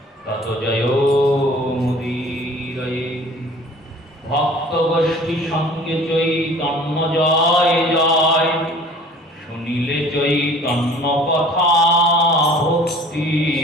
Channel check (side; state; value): both; normal; correlation 0.48